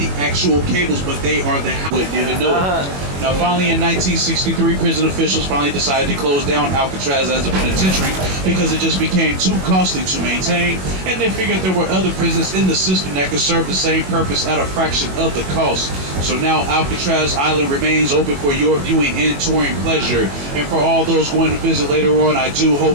actual cables, but they are the how it didn't know. Now, finally, in 1963, prison officials finally decided to close down Alcatraz as a penitentiary because it just became too costly to maintain, and they figured there were other prisons in the system that could serve the same purpose at a fraction of the cost. So now Alcatraz Island remains open for your viewing and touring pleasure. And for all those going to visit later on, I do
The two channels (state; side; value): late; left; 21 ms